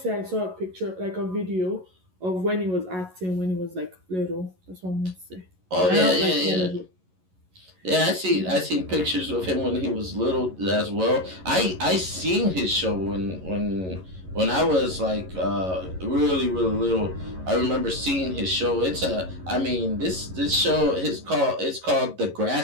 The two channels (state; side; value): late; left; 11 ms